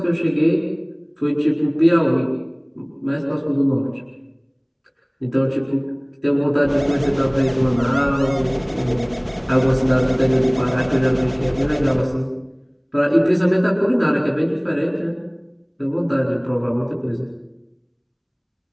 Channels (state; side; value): identical; both; correlation 1.00